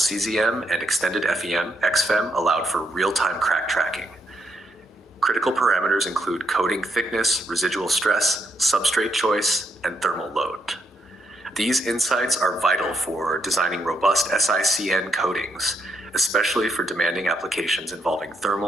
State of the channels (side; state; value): both; normal; correlation 0.78